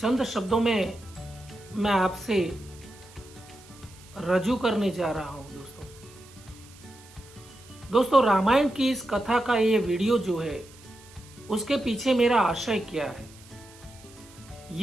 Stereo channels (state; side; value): noise; right; hiss, 23 dB below the sound